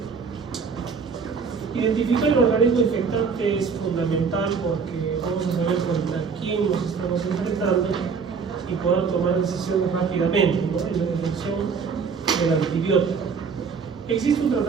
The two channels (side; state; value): left; quieter; 5.6 dB